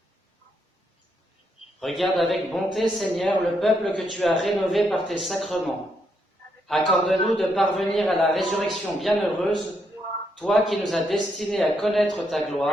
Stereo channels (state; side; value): normal; both; correlation 0.78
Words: Regarde avec bonté, Seigneur, le peuple que tu as rénové par tes sacrements. Accorde-nous de parvenir à la résurrection bienheureuse, toi qui nous as destinés à connaître ta